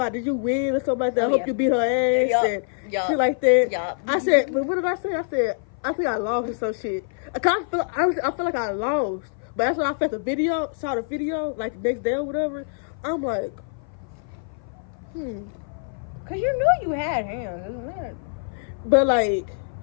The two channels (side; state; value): right; silent; 55 dB below the other